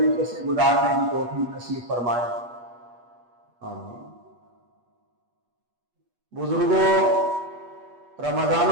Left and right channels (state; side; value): late; left; 8.3 ms